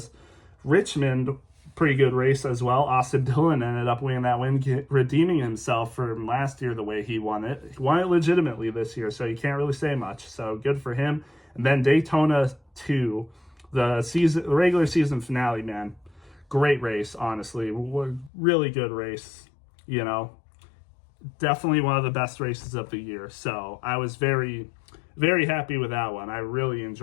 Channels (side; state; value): right; drops out; at 18.3 s